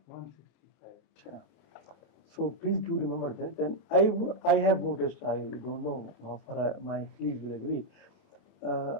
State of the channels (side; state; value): right; late; 28 ms